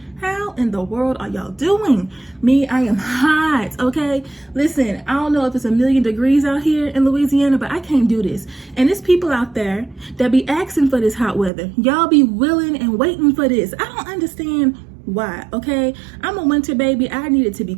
How in the world are y'all doing? Me, I am hot, okay? Listen, I don't know if it's 1,000,000 degrees out here in Louisiana, but I can't do this. And there's people out there that be asking for this hot weather. Y'all be willing and waiting for this. I don't understand why, okay? I'm a winter baby. I need it to be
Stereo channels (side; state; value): left; drops out; at 11.5 s